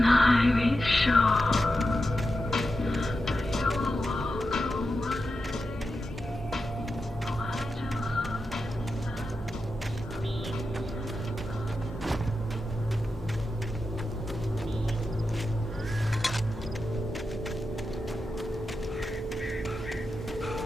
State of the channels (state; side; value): normal; both; correlation 0.89